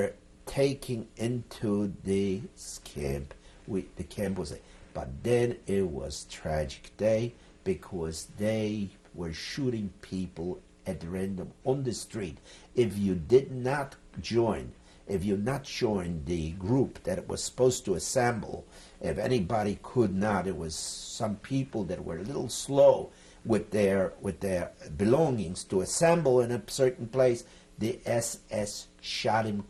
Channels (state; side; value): identical; both; correlation 1.00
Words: taken into this camp. The camp was, but then it was tragic day because they were shooting people at random on the street. If you did not join, if you not joined the group that was supposed to assemble, if anybody could not, it was some people that were a little slow with their belongings to assemble in a certain place. The SS shot him